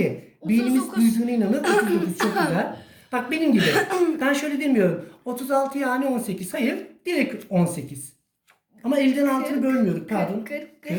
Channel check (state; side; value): identical; both; correlation 1.00